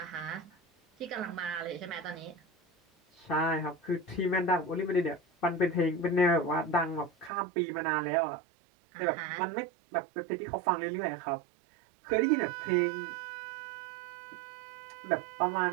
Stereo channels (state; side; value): drops out; left; at 7.3 s